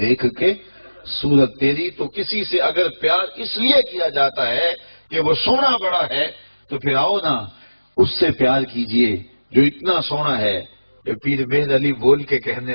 کے صورت تیری۔ تو کسی سے اگر پیار اس لیے کیا جاتا ہے کہ وہ سونا بڑا ہے، تو پھر آؤ نا اس سے پیار کیجئے جو اتنا سونا ہے کہ پیر مہر علی بول کے کہنے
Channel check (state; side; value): inverted; both; correlation -1.00